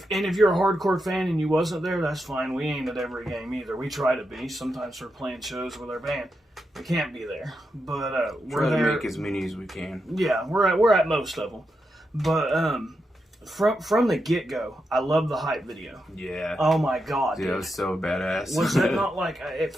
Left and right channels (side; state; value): both; normal; correlation 0.86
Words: you're a hardcore fan and you wasn't there, that's fine. We ain't at every game either. We try to be. Sometimes we're playing shows with our band. We can't be there, but we're Try to there. make as many as we can. Yeah, we're at most of them, but from the get go, I love the hype video. Yeah. Oh my god, Dude, dude. that was so badass. Was that not like it